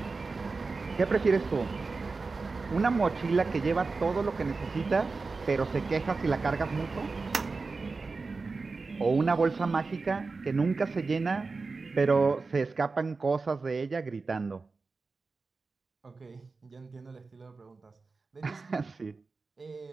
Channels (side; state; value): left; quieter; 4.1 dB